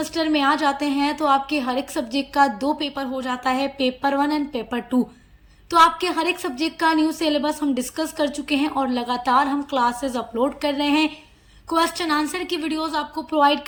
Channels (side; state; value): both; identical; correlation 1.00